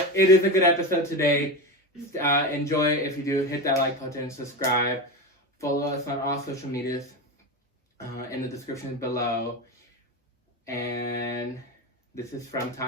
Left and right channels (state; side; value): normal; both; correlation 0.20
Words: it is a good episode today. Enjoy it. If you do, hit that like button, subscribe, follow us on all social medias in the description below. And this is from